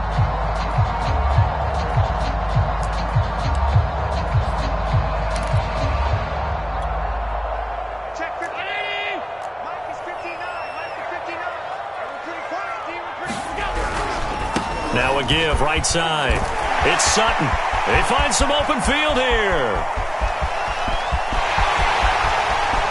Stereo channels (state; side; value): identical; both; correlation 1.00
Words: Now a give, right side. It's Sutton. They find some open field here.